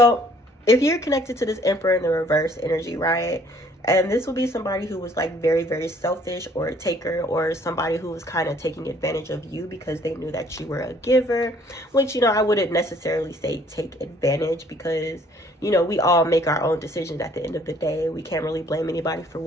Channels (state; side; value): normal; both; correlation 0.60